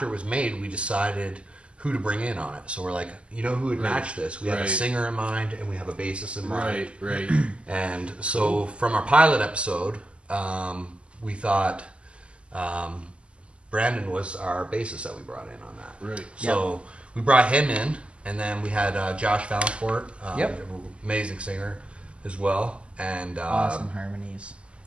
it was made, we decided who to bring in on it. So we're like, you know who would Right. match this? We have a Right. singer in mind, and we have a bassist in mind. Right. And so from our pilot episode, we thought Brandon was our bassist that we brought in on that. Right. So we brought him in, and then we had Josh Valancourt, Yep. amazing singer as well. and Awesome harmonies.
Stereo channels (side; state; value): left; late; 0.055 ms